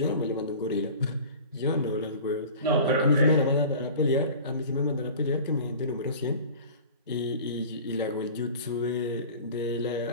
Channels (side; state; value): both; inverted; correlation -0.40